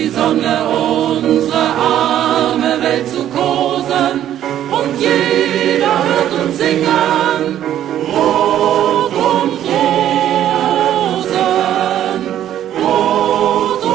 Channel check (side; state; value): left; quieter; 11.4 dB